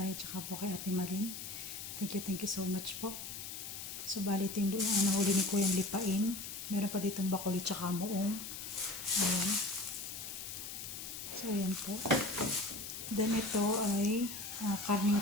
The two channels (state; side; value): noise; left; hiss, 8 dB below the sound